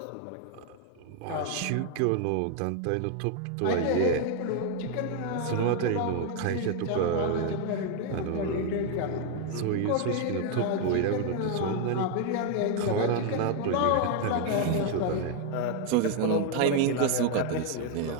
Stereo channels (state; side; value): different; both; correlation 0.00